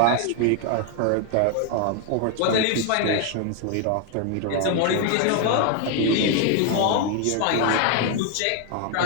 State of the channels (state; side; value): different; both; correlation 0.01